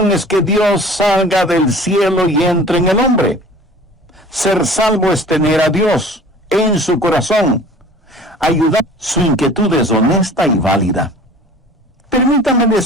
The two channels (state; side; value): normal; both; correlation 0.45